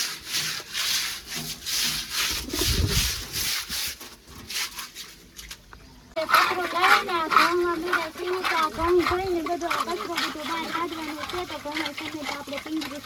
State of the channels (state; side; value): identical; both; correlation 1.00